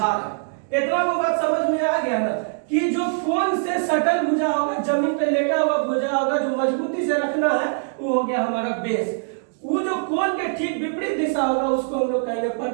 है। इतना वो बात समझ में आ गया ना कि जो कोण से सटल भुजा होगा, जमीन पे लेटा हुआ भुजा होगा, जो मजबूती से रखना है वो हो गया हमारा बेस। वो जो कोण के ठीक विपरीत दिशा होगा उसको हम लोग कहेंगे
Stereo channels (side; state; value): left; silent; digital silence